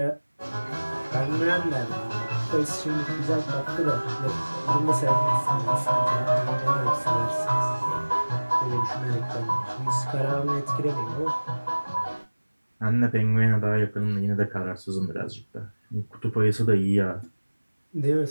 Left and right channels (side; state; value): both; inverted; correlation -1.00